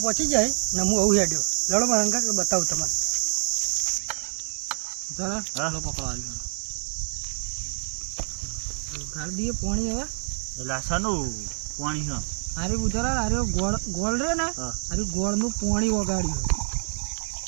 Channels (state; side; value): silent; left; digital silence